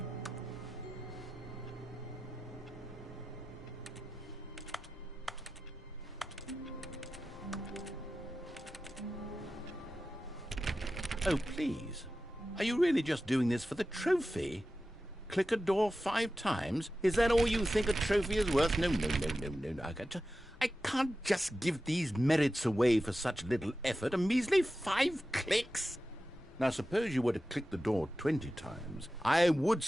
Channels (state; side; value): normal; both; correlation 0.93